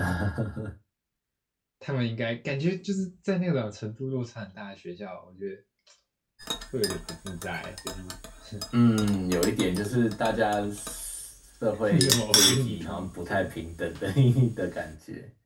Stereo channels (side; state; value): both; identical; correlation 1.00